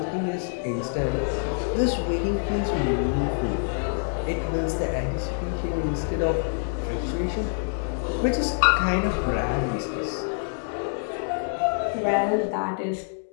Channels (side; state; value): right; silent; digital silence